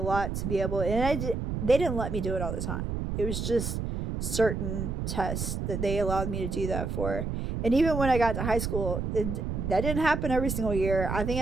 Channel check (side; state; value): right; noise; rumble, 3 dB below the sound